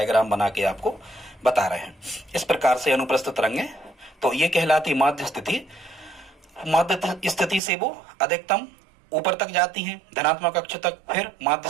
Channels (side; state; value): left; drops out; at 7.6 s